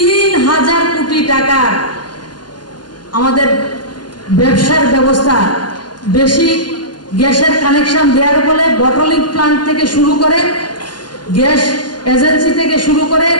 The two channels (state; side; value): late; right; 0.71 ms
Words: কোটি টাকা আমাদের ব্যবসার ব্যবস্থা, বেশি গ্যাসের কানেকশন দেওয়ার ফলে বটলিং প্লান্ট থেকে শুরু করে, গ্যাস এজেন্সি থেকে শুরু করে,